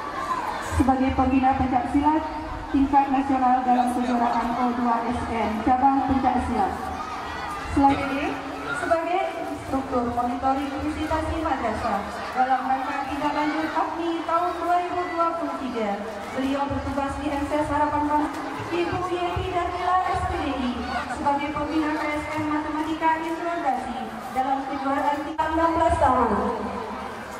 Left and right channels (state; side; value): identical; both; correlation 1.00